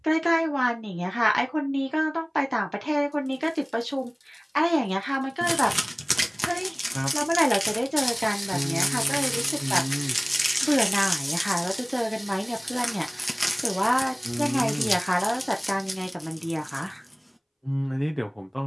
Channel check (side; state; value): both; identical; correlation 1.00